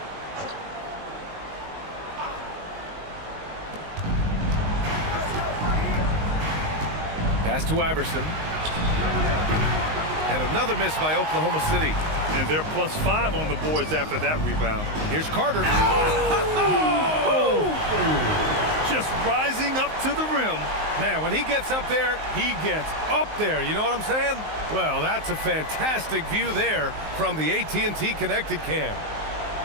Pass to Iverson. And another miss by Oklahoma City. And they're +5 on the boards after that rebound. Here's Carter. Oh! Just rising up to the rim. Man, when he gets up there, he gets up there. You know what I'm saying? Well, that's a fantastic view there from the AT&T Connected Cam.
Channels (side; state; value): left; late; 19 ms